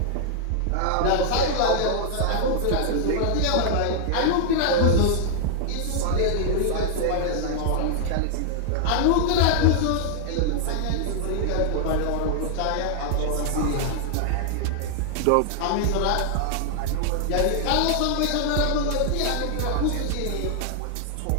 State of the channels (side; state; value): both; different; correlation -0.01